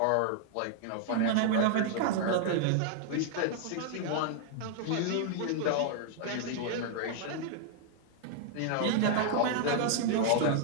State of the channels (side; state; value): both; different; correlation 0.00